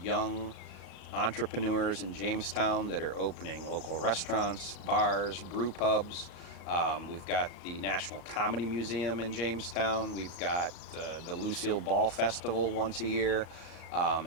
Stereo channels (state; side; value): late; right; 38 ms